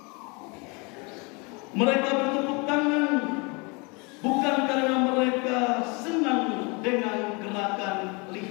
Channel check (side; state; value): right; quieter; 29.7 dB